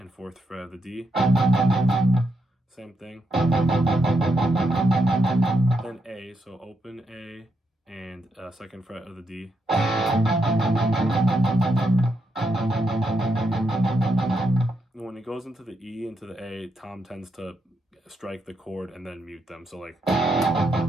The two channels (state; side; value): normal; both; correlation 0.81